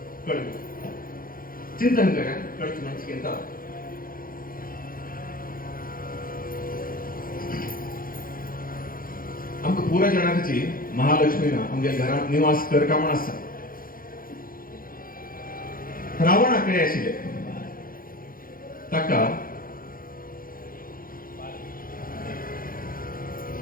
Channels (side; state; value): right; late; 0.41 ms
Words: कळत चिंतन करा कळत म्हणजे आमकां पुरा जाणांची महालक्ष्मीना आमच्या घरात निवास करता म्हण आसा रावणाकडे आशिल्ले ताका